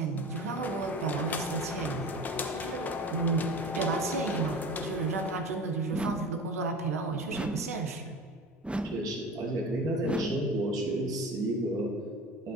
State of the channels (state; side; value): normal; both; correlation 0.35